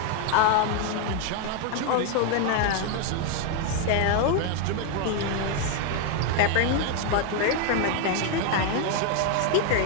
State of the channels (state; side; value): different; both; correlation 0.01